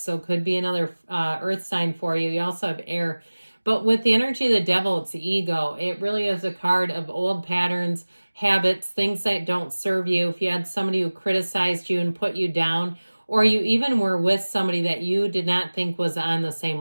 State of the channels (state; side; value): inverted; both; correlation -1.00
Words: could be another Earth sign for you. You also have air. But with the energy of the devil, it's the ego. It really is a card of old patterns, habits, things that don't serve you. If you had somebody who criticized you and put you down, or you even were with somebody that you did not think was on the